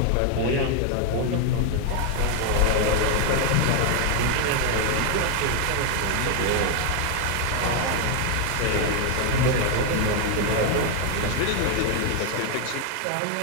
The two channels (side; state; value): both; different; correlation 0.01